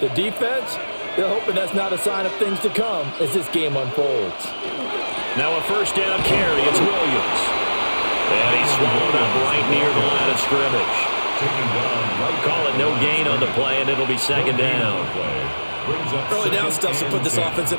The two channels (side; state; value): both; inverted; correlation -1.00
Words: defense, they're hoping that's not a sign of things to come as this game unfolds. Now a first down carry. It's Williams. And he's swallowed up right near the line of scrimmage. Call it no gain on the play, and it'll be second down. Early down stuff to put this offense in